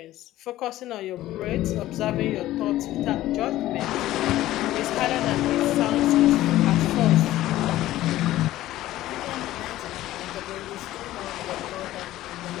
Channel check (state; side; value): quieter; right; 15.0 dB